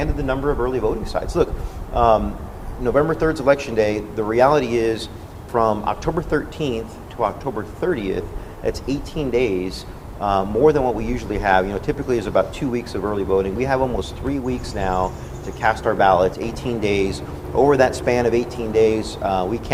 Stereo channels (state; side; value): identical; both; correlation 1.00